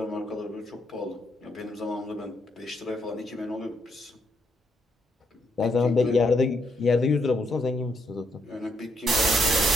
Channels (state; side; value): normal; both; correlation 0.75